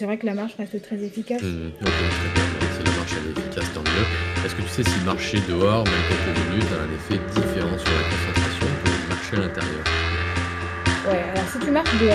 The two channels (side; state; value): both; identical; correlation 1.00